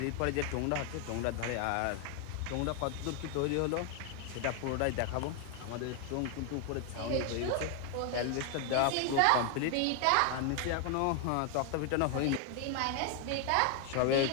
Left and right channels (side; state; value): both; different; correlation 0.00